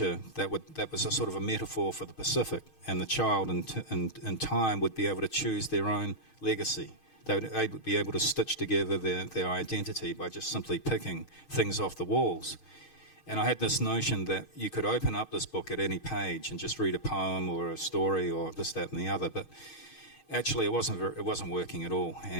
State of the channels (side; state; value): right; late; 6.4 ms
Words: that was a sort of a metaphor for the Pacific, and the child in time would be able to choose their own legacy. They would be able to stitch together their identity by just simply picking things off the walls. And I had this notion that you could open up this book at any page and just read a poem or a story or this, that, and the other. But actually, it wasn't working at all.